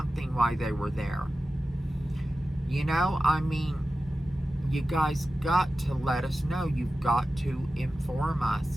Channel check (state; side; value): normal; both; correlation 0.94